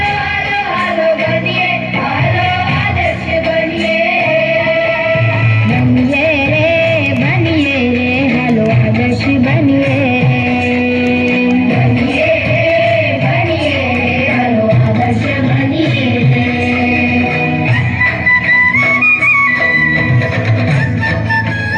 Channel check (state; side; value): identical; both; correlation 1.00